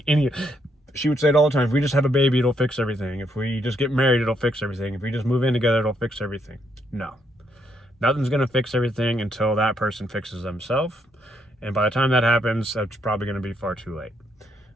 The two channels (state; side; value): normal; both; correlation 0.75